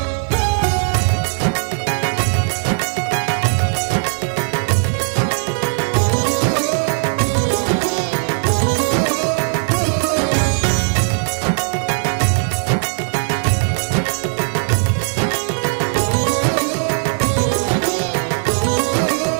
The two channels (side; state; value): left; silent; 58 dB below the other